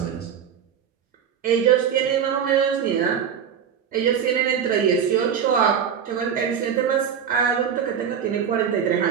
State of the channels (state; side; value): quieter; left; 8.0 dB